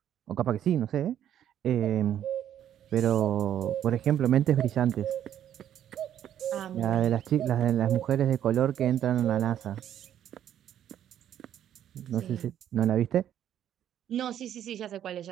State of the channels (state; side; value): quieter; left; 10.6 dB